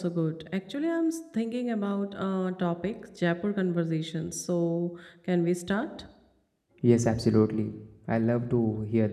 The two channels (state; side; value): identical; both; correlation 1.00